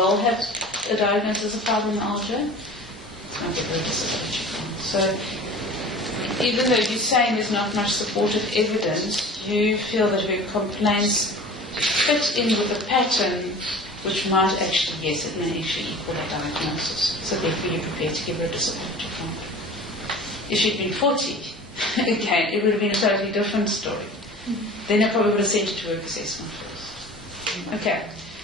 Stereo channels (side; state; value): both; normal; correlation 0.40